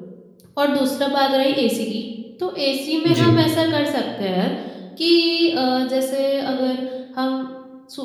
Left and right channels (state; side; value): identical; both; correlation 1.00